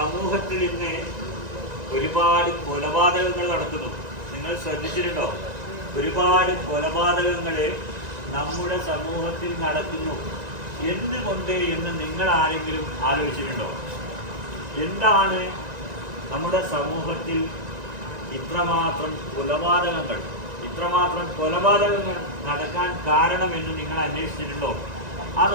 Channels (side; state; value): left; late; 1.9 ms